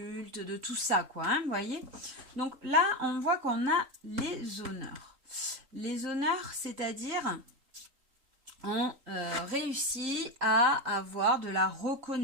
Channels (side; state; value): left; late; 3.8 ms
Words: de tout ça, quoi, hein, vous voyez. Donc là, on voit qu'on a les honneurs. Les honneurs, c'est-à-dire... on réussit à avoir de la